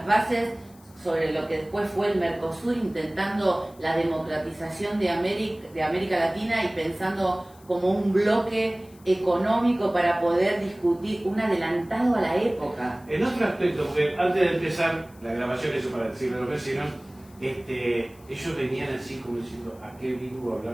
bases sobre lo que después fue el Mercosur, intentando la democratización de América Latina y pensando como un bloque económico para poder discutir, un adelantado a la época. En otro aspecto, porque antes de empezar la grabación, eso para decirle a los vecinos, ellos venían así como diciendo, ¿a qué vengo a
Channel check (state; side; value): noise; left; hiss, 27 dB below the sound